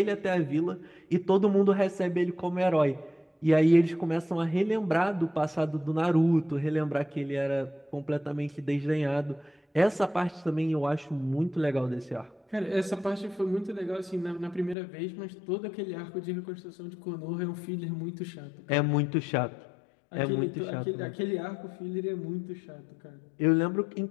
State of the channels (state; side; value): drops out; right; at 14.8 s